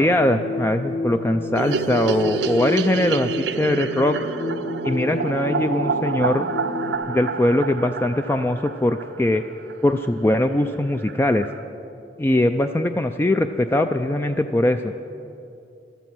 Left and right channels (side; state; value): both; normal; correlation 0.70